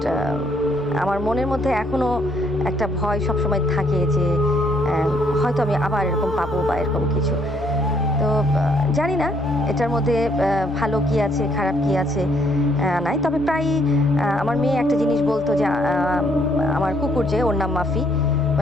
আমার মনের মধ্যে এখনও একটা ভয় সবসময় থাকে যে হয়তো আমি আবার এরকম পাবো বা এরকম কিছু। তো জানি না এটার মধ্যে ভালো কি আছে খারাপ কি আছে নাই। তবে প্রায় আমার মেয়ে একটা জিনিস বলতো যে আমার কুকুর, যে ওর নাম মাফি,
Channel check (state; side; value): normal; both; correlation 0.68